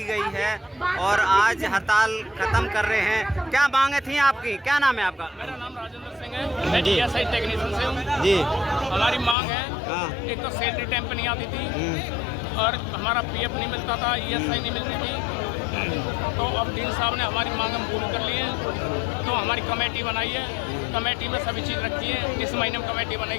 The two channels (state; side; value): drops out; right; at 9.3 s